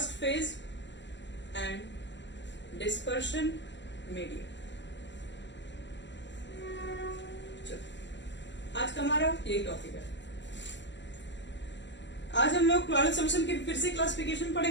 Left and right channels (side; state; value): right; late; 0.52 ms